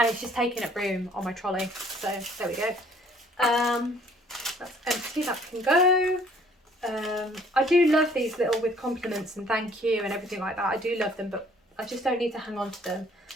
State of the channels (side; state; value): both; normal; correlation 0.59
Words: it's just taking up room on my trolley. So there we go. That's empty, that can go. I do love these little with compliments and thank you and everything like that. I do love them, but I just don't need to hang on to them.